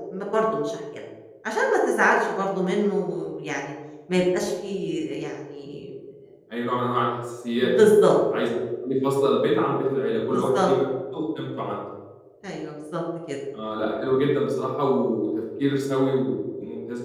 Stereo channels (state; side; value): identical; both; correlation 1.00